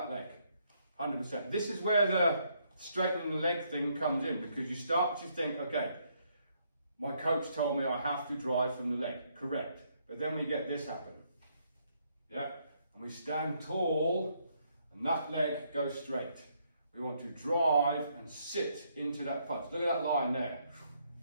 leg, 100%. This is where the straightening the leg thing comes in, because you start to think, okay, my coach told me I have to drive from the leg, correct. But then we get this happen, yeah? And we stand tall and that leg goes straight. We want to drive and sit into that punch. Look at that line there,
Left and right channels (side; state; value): both; inverted; correlation -0.72